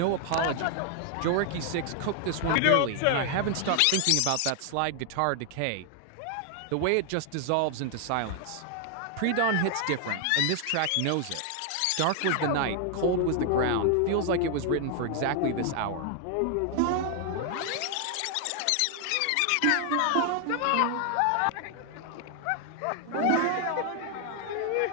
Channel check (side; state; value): both; different; correlation 0.00